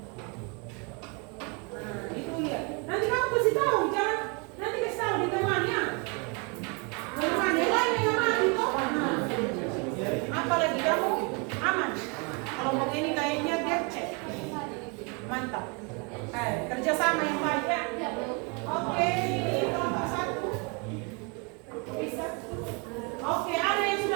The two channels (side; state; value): left; quieter; 32.8 dB